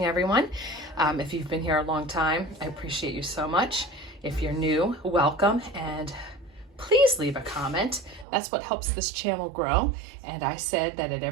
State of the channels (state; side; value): drops out; left; at 8.2 s